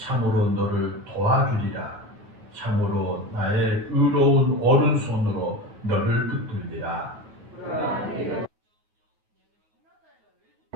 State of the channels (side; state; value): left; late; 9.3 ms